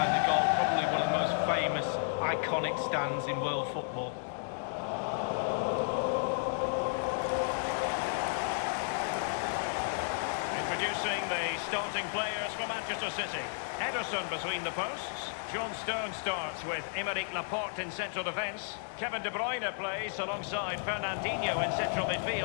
the goal. Probably one of the most famous, iconic stands in world football. Introducing the starting players for Manchester City. Ederson between the posts. John Stones starts with Aymeric Laporte in central defence. Kevin De Bruyne plays alongside Fernandinho in central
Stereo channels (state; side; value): silent; right; digital silence